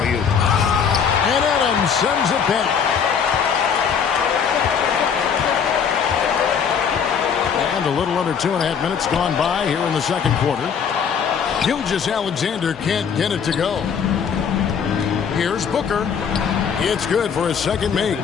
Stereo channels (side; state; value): right; quieter; 7.0 dB